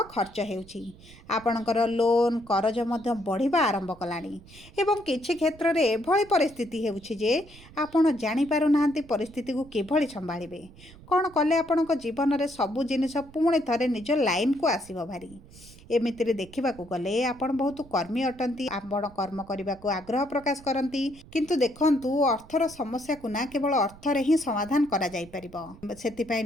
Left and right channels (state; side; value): noise; right; rumble, 21 dB below the sound